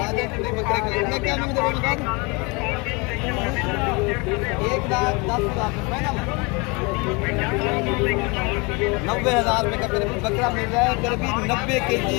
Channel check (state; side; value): quieter; right; 28.6 dB